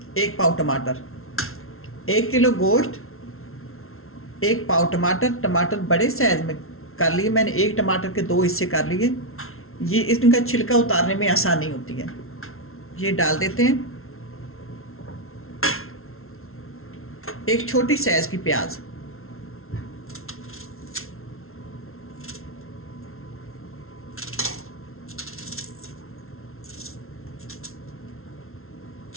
1 पाव टमाटर, 1 किलो गोश्त, 1 पाव टमाटर। टमाटर बड़े साइज में कर लिए मैंने, एक टमाटर के 2 हिस्से कर लिए। ये इनका छिलका उतारने में आसानी होती है। ये डाल देते हैं। एक छोटी साइज की प्याज,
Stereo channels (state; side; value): late; right; 0.62 ms